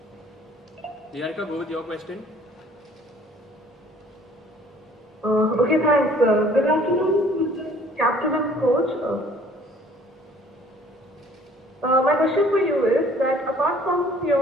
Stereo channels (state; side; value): normal; both; correlation 0.55